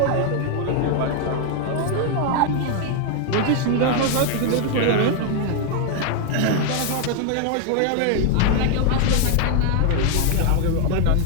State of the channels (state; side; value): different; both; correlation 0.00